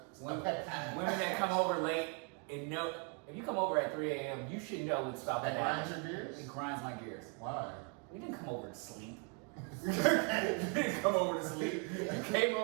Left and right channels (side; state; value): left; quieter; 37.6 dB